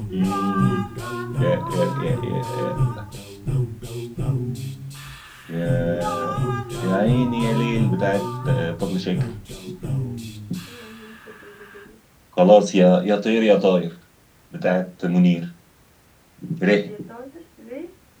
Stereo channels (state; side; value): identical; both; correlation 1.00